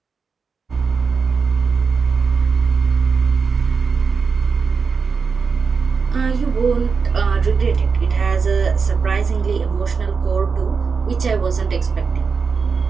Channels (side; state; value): left; quieter; 5.2 dB